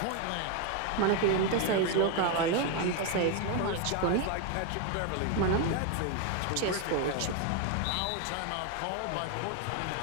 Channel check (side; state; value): both; different; correlation 0.01